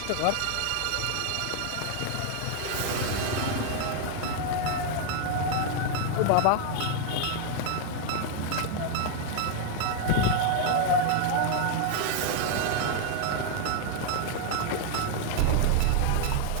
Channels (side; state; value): both; different; correlation 0.00